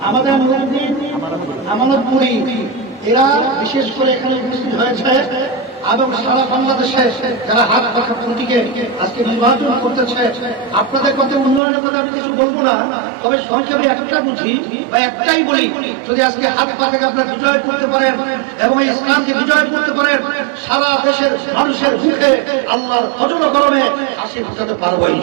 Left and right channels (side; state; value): left; drops out; at 11.6 s